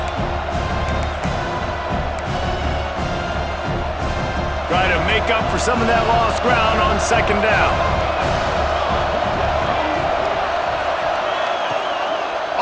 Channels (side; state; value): both; identical; correlation 1.00